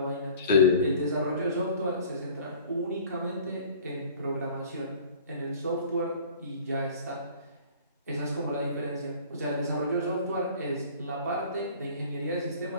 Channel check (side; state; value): both; inverted; correlation -0.47